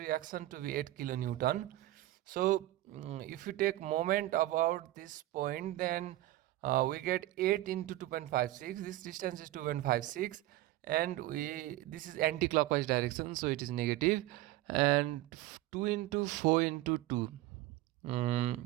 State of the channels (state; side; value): quieter; left; 16.1 dB